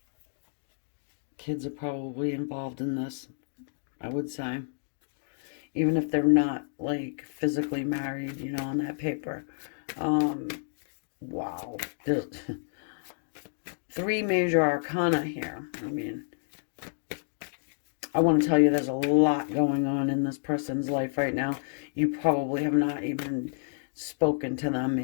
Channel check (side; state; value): right; silent; digital silence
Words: Kids are probably involved in this, I would say. Even if they're not, like, physically married, on that paper. Um, wow. There's 3 major arcana here. I mean, I want to tell you there's a lot going on in this person's life right now. You probably have not even spoken to them